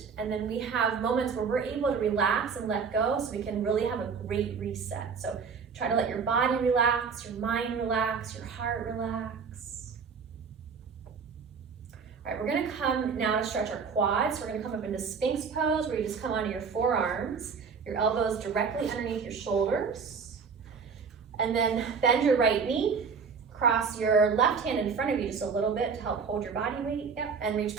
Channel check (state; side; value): quieter; left; 5.7 dB